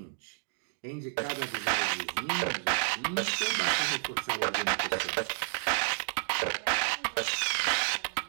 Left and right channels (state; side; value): silent; left; digital silence